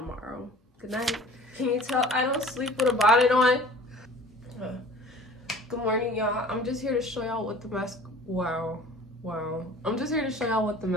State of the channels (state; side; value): normal; both; correlation 0.46